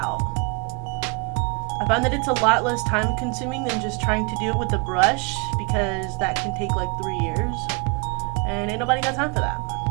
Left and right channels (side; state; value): left; quieter; 33.5 dB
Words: I find that it's a lot less time consuming than just trying to do it with a brush, because that can take like 3 years, and ain't nobody got time for that.